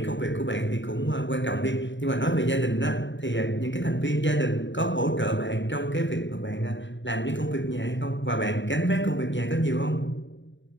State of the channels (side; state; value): right; late; 0.54 ms